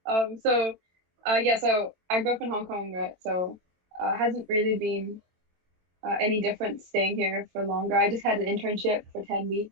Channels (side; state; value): left; late; 23 ms